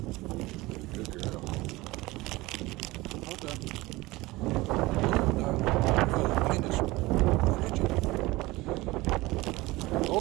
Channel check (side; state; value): left; quieter; 20.5 dB